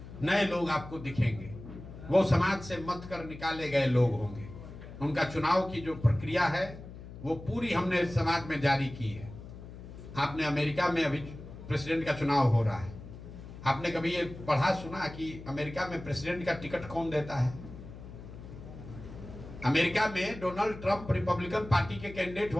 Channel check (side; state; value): left; noise; hum, 14 dB below the sound